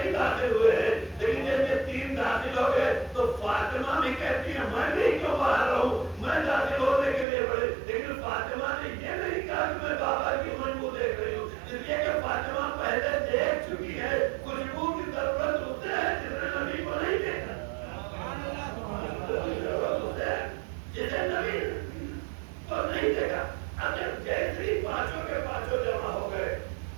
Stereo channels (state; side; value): drops out; left; at 7.2 s